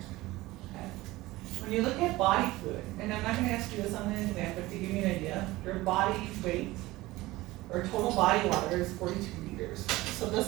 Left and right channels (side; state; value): left; quieter; 18.9 dB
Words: Okay. When you look at body fluid, and I'm not going to ask you this on the exam, but to give you an idea, your body weight or total body water is 42 liters. So